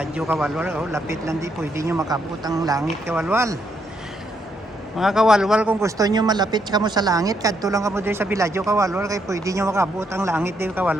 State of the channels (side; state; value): both; normal; correlation 0.75